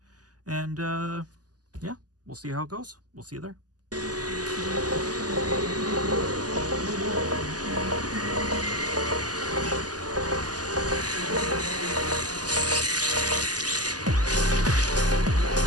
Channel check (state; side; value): late; left; 0.68 ms